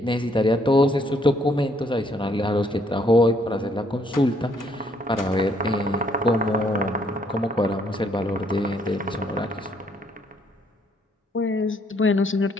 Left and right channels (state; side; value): normal; both; correlation 0.68